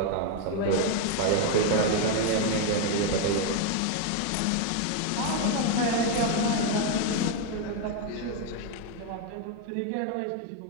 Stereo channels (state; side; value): different; both; correlation 0.01